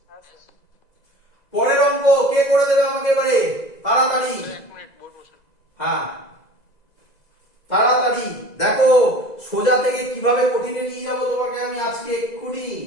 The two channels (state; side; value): late; right; 2.0 ms